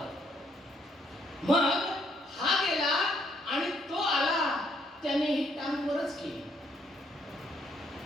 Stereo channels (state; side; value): normal; both; correlation 0.71